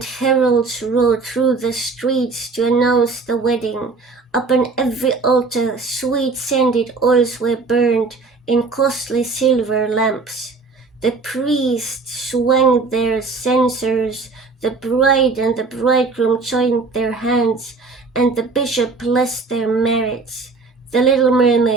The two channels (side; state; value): left; quieter; 4.0 dB